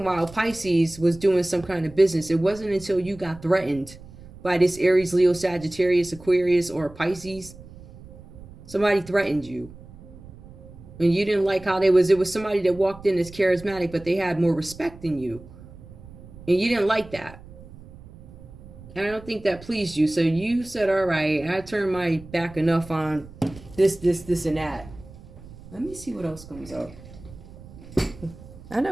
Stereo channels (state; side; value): noise; right; rumble, 18 dB below the sound